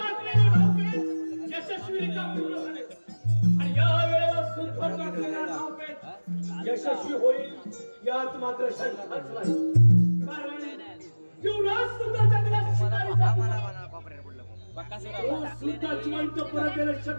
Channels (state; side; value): inverted; both; correlation -1.00